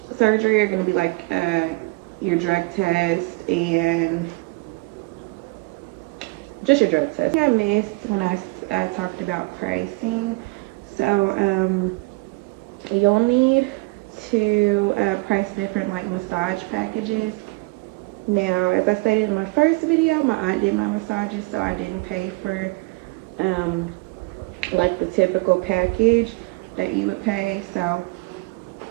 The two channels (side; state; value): left; quieter; 25.5 dB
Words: surgery are gonna be like your drug test and just your drug test. I missed when I talked about pricing. So you'll need to price different like massage packages. Now, as I stated in my first video, my aunt did my massages, so I didn't pay for um, like the typical package that you would pay. So,